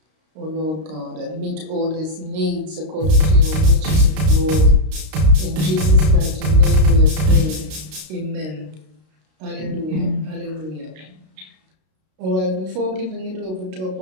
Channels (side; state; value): left; late; 32 ms